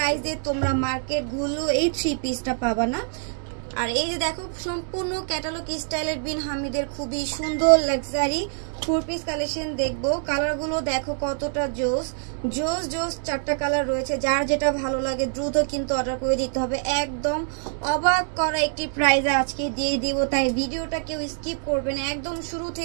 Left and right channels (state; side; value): silent; left; 62 dB below the other